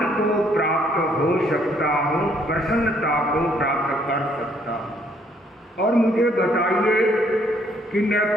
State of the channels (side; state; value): both; normal; correlation 0.66